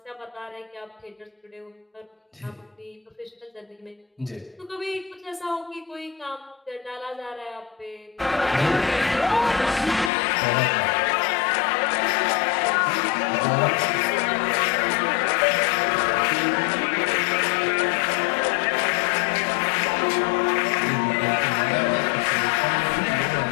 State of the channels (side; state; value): right; drops out; at 10.1 s